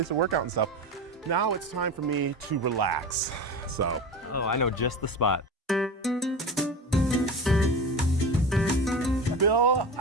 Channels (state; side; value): normal; both; correlation 0.28